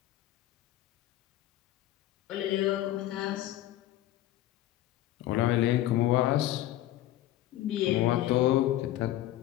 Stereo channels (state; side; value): quieter; right; 14.2 dB